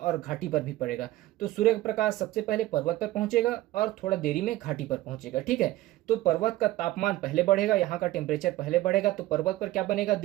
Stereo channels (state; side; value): quieter; left; 16.6 dB